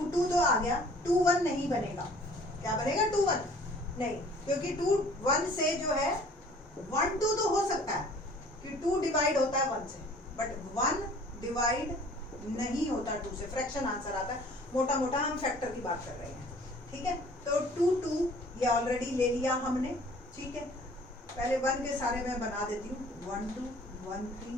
2 तो आ गया, 2 1 नहीं बनेगा। क्या बनेगा? 2 1 नहीं, क्योंकि 2 1 से जो है 1 2 तो हो सकता है कि 2 डिवाइड होता है 1 से, बट 1 डिवाइड नहीं होता 2 से, फ्रैक्शन आंसर आता है। मोटा मोटा हम फैक्टर की बात कर रहे हैं, ठीक है। तो 2 2 ये ऑलरेडी ले लिया हमने, ठीक है। पहले 1 के सारे मैं बना देती हूँ, 1 2 1 3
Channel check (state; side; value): normal; both; correlation 0.52